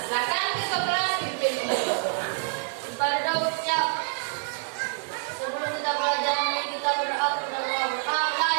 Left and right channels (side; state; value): left; silent; 60 dB below the other